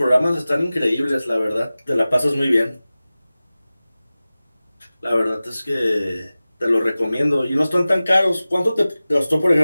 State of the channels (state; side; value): inverted; both; correlation -0.97